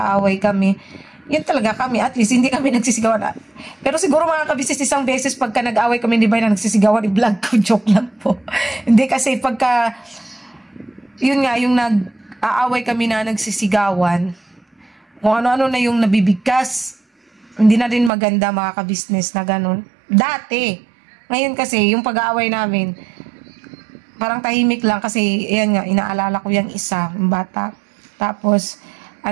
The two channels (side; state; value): left; drops out; at 18.1 s